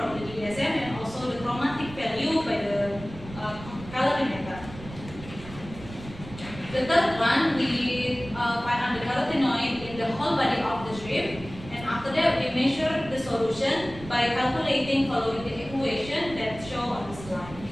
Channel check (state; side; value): noise; right; rumble, 14 dB below the sound